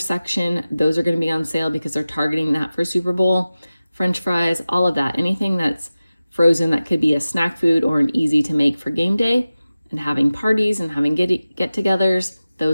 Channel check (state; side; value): inverted; both; correlation -0.96